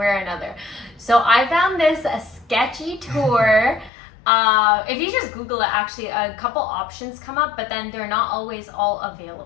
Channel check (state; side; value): drops out; right; at 3.9 s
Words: or another. So I found this a sketchy tour. If you just Google it, actually a couple options come up, but then they're not always all